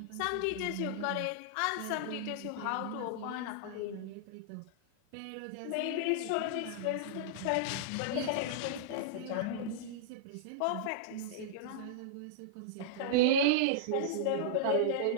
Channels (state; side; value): different; both; correlation -0.02